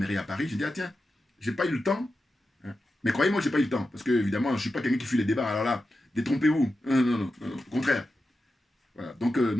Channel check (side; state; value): both; normal; correlation 0.91